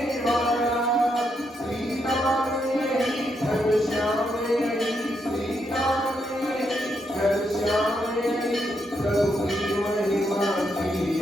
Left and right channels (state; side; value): normal; both; correlation 0.79